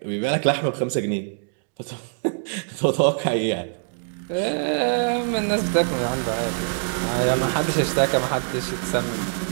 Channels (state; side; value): silent; left; 63 dB below the other